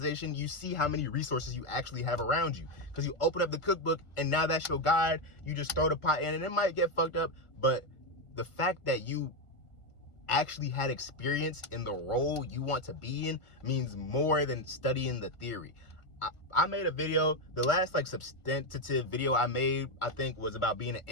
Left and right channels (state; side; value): late; right; 1.4 ms